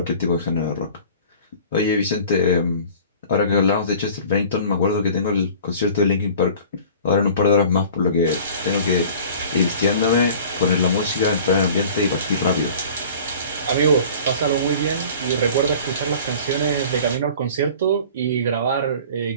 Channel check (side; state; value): both; inverted; correlation -0.45